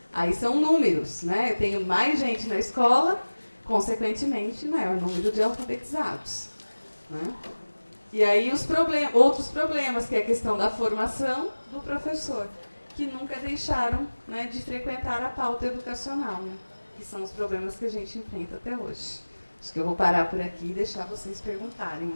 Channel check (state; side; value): inverted; both; correlation -1.00